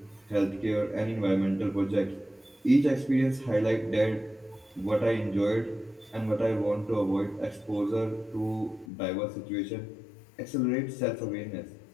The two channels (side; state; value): right; drops out; at 8.8 s